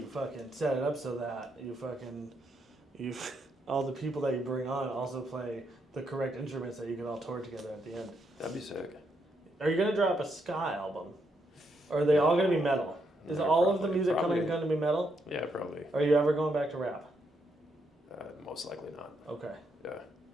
fucking set it up so that you all the people that you bring on also play the correct instruments that you can all tour together at the end. That'd be sick. Are you gonna drop a ska album? Or are they all gonna be metal? Is Yeah, all of the probably- music probably. coming gonna be metal? Yeah, probably. Are you ever going back to rap? Most likely not. Okay. Yeah.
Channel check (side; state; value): both; normal; correlation 0.78